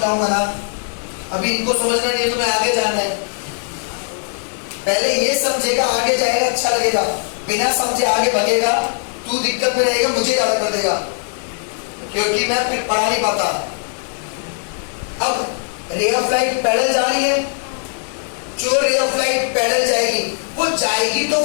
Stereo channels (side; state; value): right; silent; 66 dB below the other